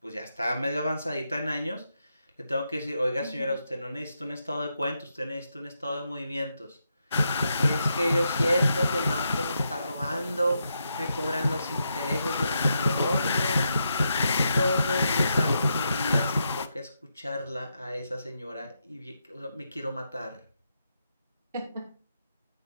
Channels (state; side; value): inverted; both; correlation -0.83